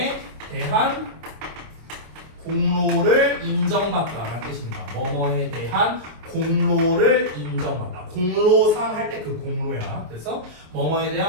대한 공로를 인정받다라는 뜻입니다. 뭐뭐에 대한 공로를 인정받다. 공로상 할 때 그 공로야. 그래서 뭐뭐에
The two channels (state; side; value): late; left; 26 ms